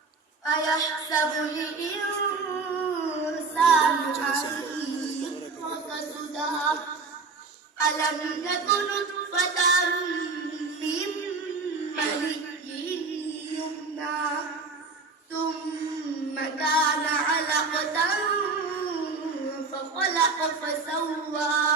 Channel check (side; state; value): left; quieter; 4.2 dB